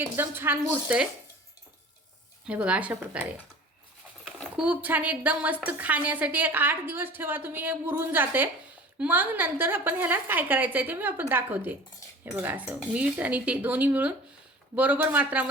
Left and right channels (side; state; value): both; normal; correlation 0.41